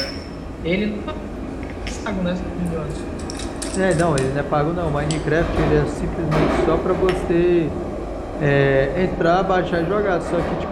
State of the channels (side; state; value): both; identical; correlation 1.00